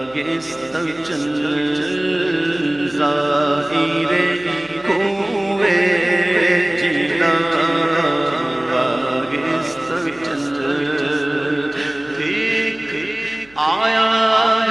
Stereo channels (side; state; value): right; noise; hum, 28 dB below the sound